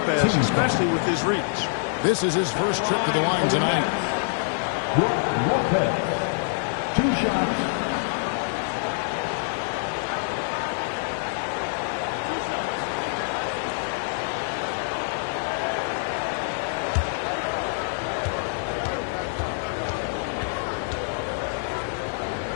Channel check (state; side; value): silent; right; 61 dB below the other